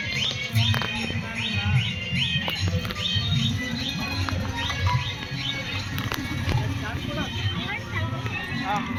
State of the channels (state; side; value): identical; both; correlation 1.00